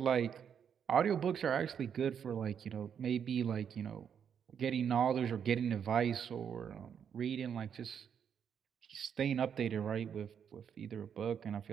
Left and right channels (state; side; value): quieter; left; 7.9 dB